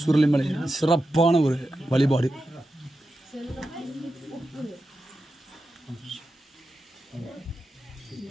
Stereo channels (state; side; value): normal; both; correlation 0.90